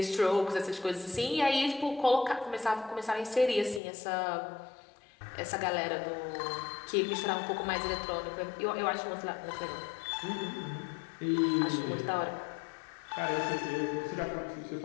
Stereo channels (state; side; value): drops out; right; at 3.8 s